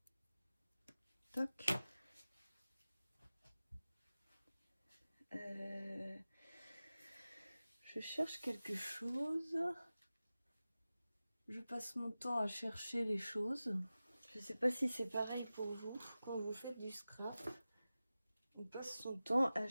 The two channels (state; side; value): inverted; both; correlation -0.96